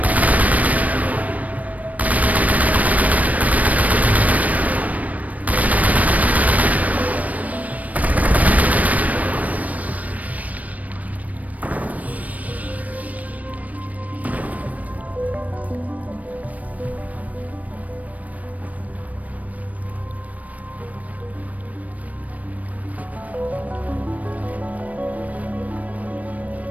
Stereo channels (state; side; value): late; left; 0.071 ms